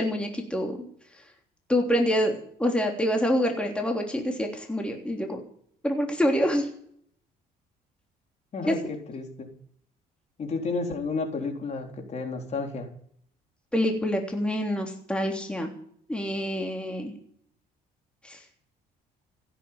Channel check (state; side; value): normal; both; correlation 0.75